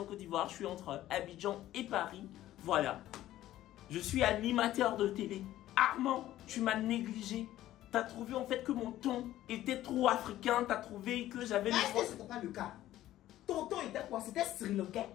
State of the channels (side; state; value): right; quieter; 14.0 dB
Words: Côte d'Ivoire. Je suis entre Abidjan et Paris. Voilà. Je suis animateur de télé. Armand, tu m'as négligé. T'as trouvé en fait que mon ton était trop africain. T'as trouvé que j'avais... Est-ce que c'était pas le cas? Ton ton était quoi? C'était Sri Lankais?